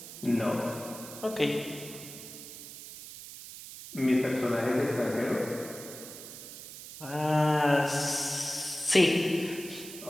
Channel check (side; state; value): right; noise; hiss, 13 dB below the sound